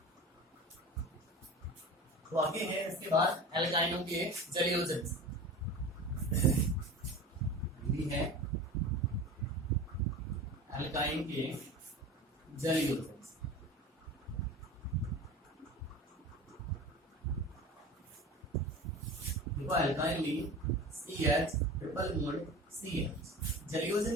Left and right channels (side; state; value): both; normal; correlation 0.34